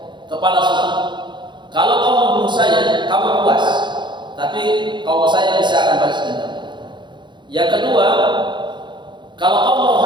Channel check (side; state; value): left; late; 0.22 ms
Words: kepala suku. Kalau kamu membunuh saya, kamu puas, tapi kaum saya bisa akan balas dendam. Yang kedua, kalau kamu mau